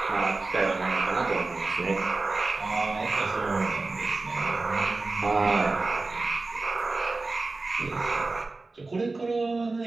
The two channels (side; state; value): left; quieter; 3.6 dB